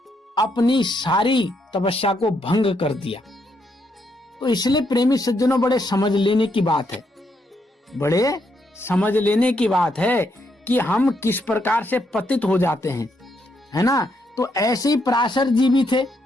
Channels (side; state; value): both; normal; correlation 0.77